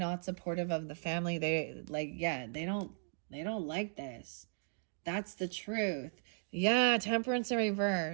supportive of the family. They like, yeah, they don't like this. That's the truth. Yeah, Temperance in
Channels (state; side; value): silent; left; digital silence